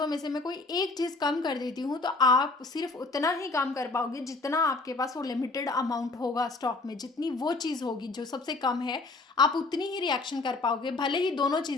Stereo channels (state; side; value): quieter; right; 3.4 dB